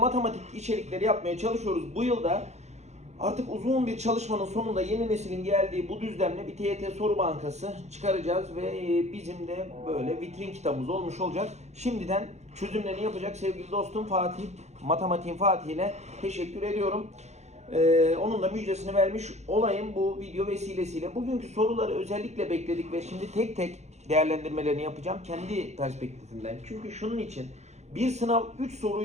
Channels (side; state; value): left; late; 0.33 ms